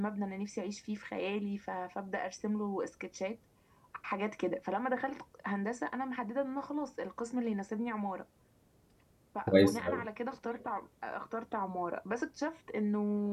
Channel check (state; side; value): identical; both; correlation 1.00